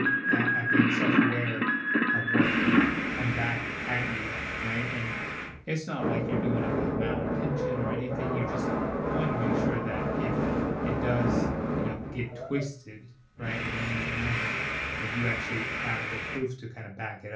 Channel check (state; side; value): identical; both; correlation 1.00